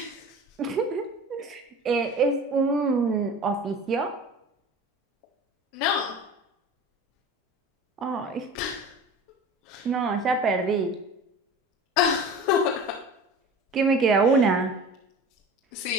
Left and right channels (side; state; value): both; normal; correlation 0.38